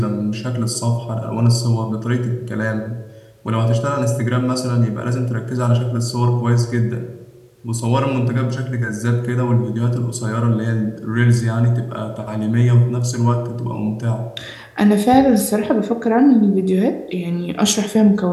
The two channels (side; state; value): both; identical; correlation 1.00